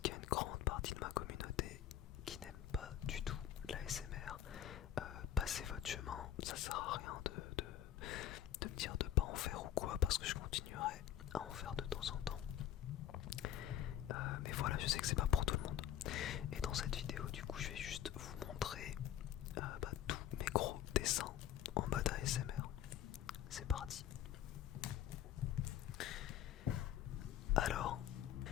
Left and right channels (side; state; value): right; quieter; 11.0 dB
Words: y a une grande partie de ma communauté qui n'aime pas du tout l'ASMR. Passez votre chemin, ça sert à rien de me dire de pas en faire ou quoi, parce que je continuerai à en faire de temps en temps. Mais voilà, je sais que c'est pas pour tout le monde. Et dans cette vidéo, du coup, je vais juste vous montrer tous mes gros dessins en mode ASMR. C'est parti. Alors,